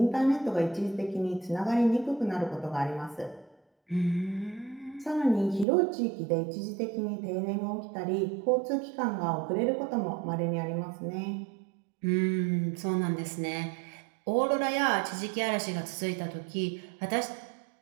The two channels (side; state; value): left; drops out; at 5.7 s